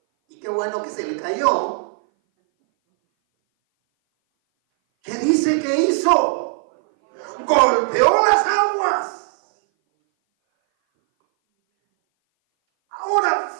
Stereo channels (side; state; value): left; silent; 60 dB below the other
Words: y qué bueno que se le cayó, ¿qué dice que hizo? Golpeó las aguas. Ahora,